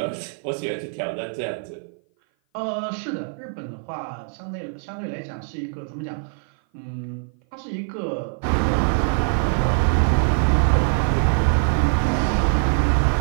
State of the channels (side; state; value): left; silent; 57 dB below the other